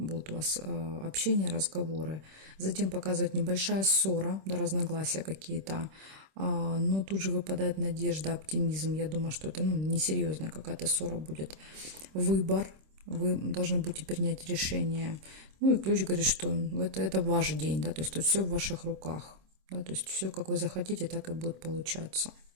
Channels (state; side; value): late; left; 26 ms